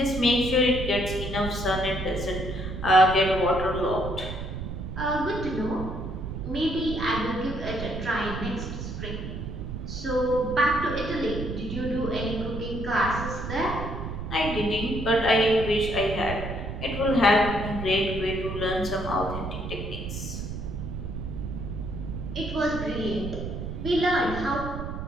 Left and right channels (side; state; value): right; noise; rumble, 6 dB below the sound